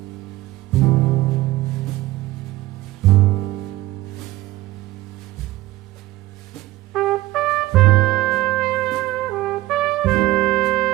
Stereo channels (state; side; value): quieter; left; 17.3 dB